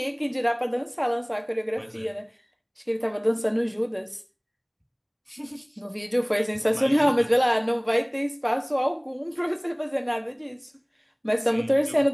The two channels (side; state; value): both; identical; correlation 1.00